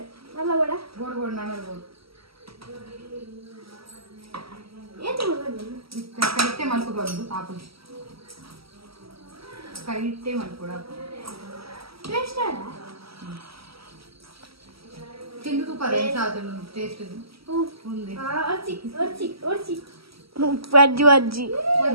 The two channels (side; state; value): left; late; 0.76 ms